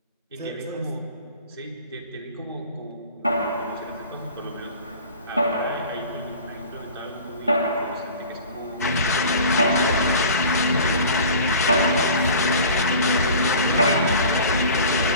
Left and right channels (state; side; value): inverted; both; correlation -0.41